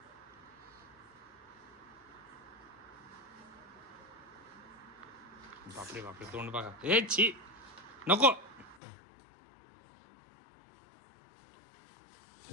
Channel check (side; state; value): right; drops out; at 8.8 s